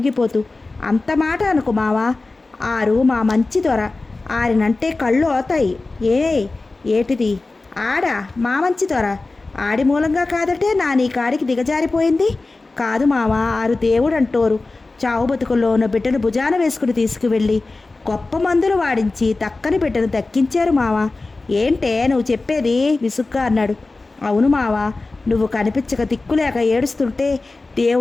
అంత మాట అనుకు మావా. ఆరు మా మంచి దొర. ఆరినంటే కళ్ళు అవుతాయి. ఏటిది? ఆడా మా మంచి దొర. ఆడి మూలంగా కాదటే నీ కాడికి దిగజారిపోయింది. కాదు మావా, ఆరు దేవుడు అంటోరు. చావు బతుకుల్లో ఉన్న బిడ్డను భుజాన వేసుకుని తీసుకువెళ్ళి గొప్ప మందులు వాడించి దక్కని బిడ్డను దక్కించారు మావా. ఏంటే నువ్వు చెప్పేది? విసుగ్గా అన్నాడు. అవును మావా, నువ్వు కనిపించక దిక్కులేక ఏడుస్తుంటే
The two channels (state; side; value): quieter; right; 3.4 dB